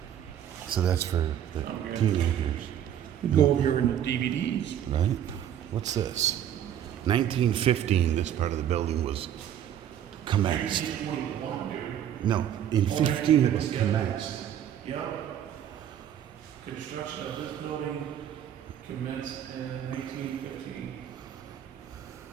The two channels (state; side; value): quieter; left; 10.3 dB